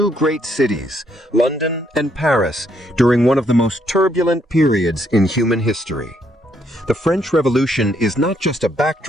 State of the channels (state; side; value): normal; both; correlation 0.72